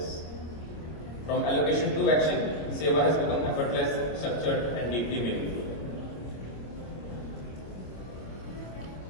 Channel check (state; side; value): late; right; 26 ms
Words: From allocation to action, Seva has become effortless, structured, and deeply meaningful.